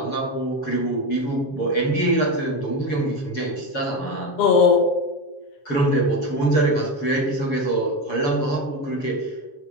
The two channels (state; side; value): late; right; 7.3 ms